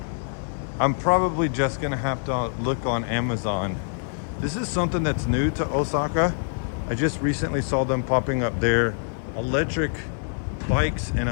I'm probably just gonna have to look on Amazon. This is something that's new to Osaka. I just recently saw them popping up there. Electric bikes and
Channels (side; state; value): right; silent; 61 dB below the other